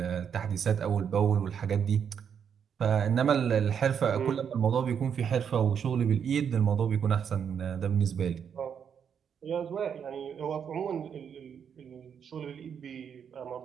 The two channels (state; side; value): quieter; left; 7.6 dB